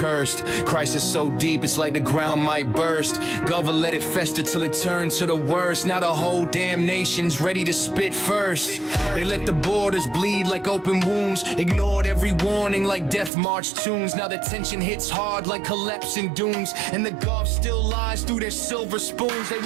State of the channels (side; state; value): left; drops out; at 13.3 s